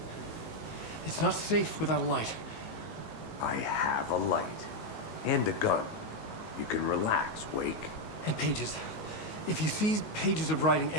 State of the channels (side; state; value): right; late; 19 ms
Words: It's not safe without a light. I have a light. And a gun. You can relax, Wake. And pages. If you see pages of writing